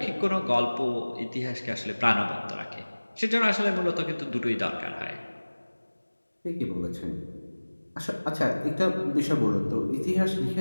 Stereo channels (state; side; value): inverted; both; correlation -1.00